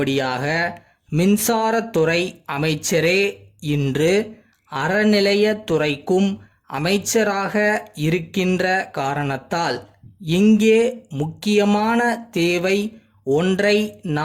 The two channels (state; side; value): identical; both; correlation 1.00